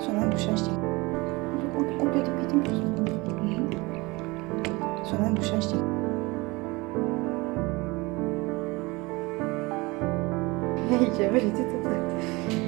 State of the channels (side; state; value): left; quieter; 23.9 dB